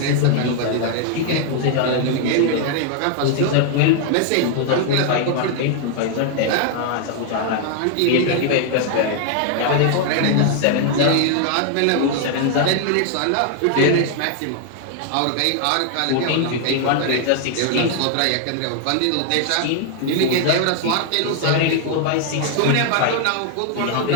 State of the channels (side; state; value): both; different; correlation 0.00